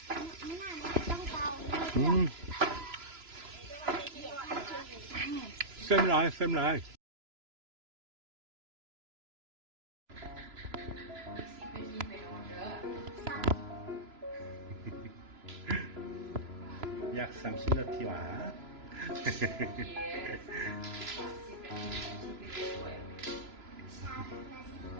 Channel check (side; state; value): left; late; 3.0 ms